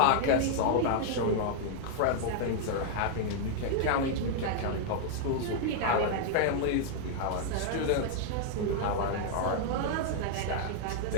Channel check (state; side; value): different; both; correlation -0.01